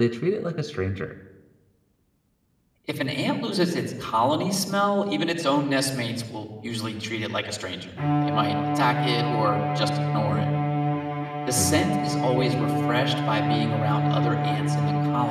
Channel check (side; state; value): both; identical; correlation 1.00